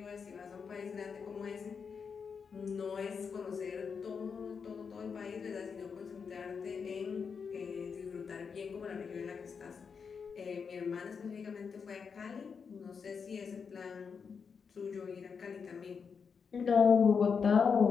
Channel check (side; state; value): right; quieter; 6.0 dB